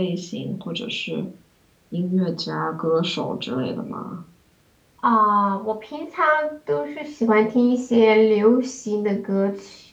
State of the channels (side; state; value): both; identical; correlation 1.00